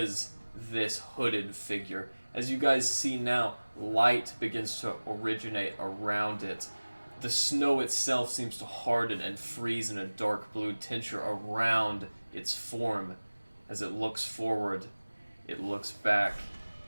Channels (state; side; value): inverted; both; correlation -1.00